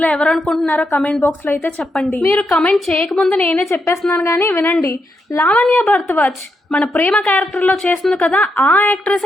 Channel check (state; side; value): normal; both; correlation 0.82